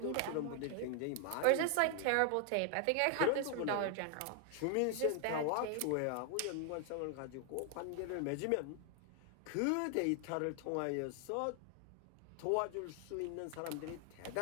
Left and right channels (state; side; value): different; both; correlation 0.00